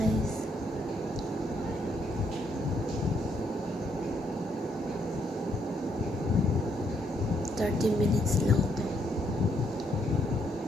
$30 lang to.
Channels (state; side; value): normal; both; correlation 0.73